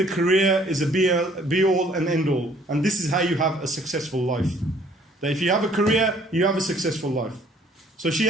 career is a be-all and end-all. And this is how you have a successful life. That if you have a career, you have a successful life. So she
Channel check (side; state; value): both; normal; correlation 0.59